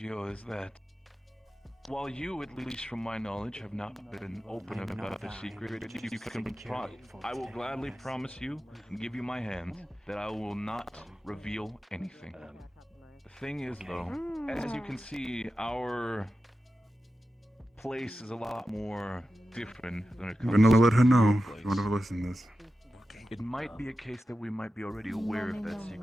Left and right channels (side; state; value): both; normal; correlation 0.93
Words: is that while you, at least from my knowledge, have not been open about the secret, you can I will gladly promise you and give you my hand that I will not reveal anything. The thing is, though, as you can see, our place is a lot more different than it I'm comes gonna let her to know your if place. you want to listen to this. It might be a case that we might be already aware of that